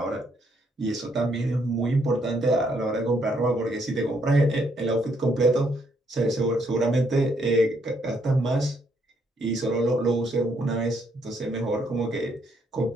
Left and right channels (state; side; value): normal; both; correlation 0.72